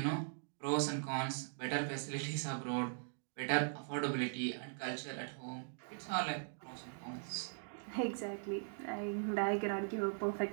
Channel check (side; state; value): left; silent; digital silence